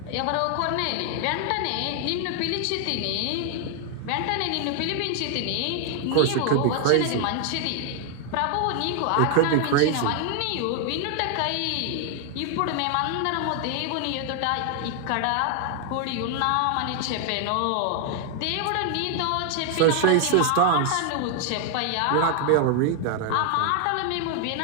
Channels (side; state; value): both; different; correlation 0.00